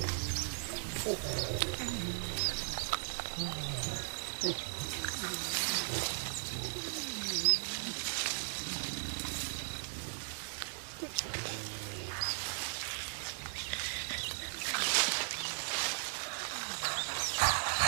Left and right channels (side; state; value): left; silent; digital silence